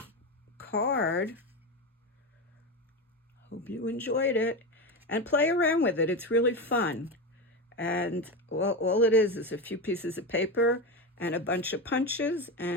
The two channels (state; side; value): normal; both; correlation 0.18